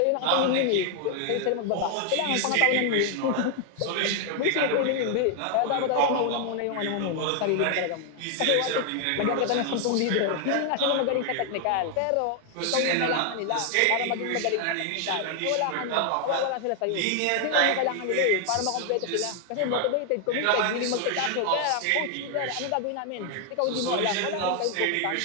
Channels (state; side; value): different; both; correlation 0.00